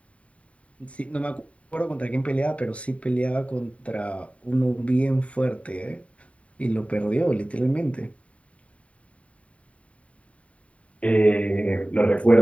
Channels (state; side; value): late; right; 0.065 ms